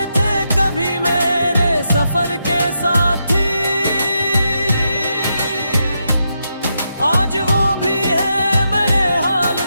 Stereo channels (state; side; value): inverted; both; correlation -0.83